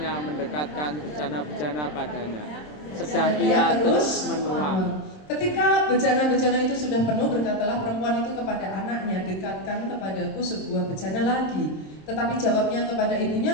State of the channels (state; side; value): late; right; 27 ms